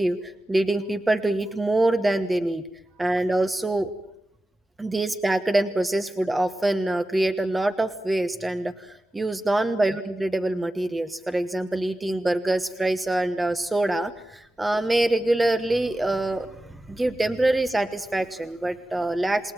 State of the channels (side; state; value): both; normal; correlation 0.93